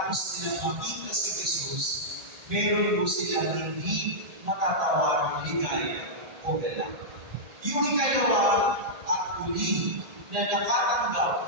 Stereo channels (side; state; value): left; late; 1.8 ms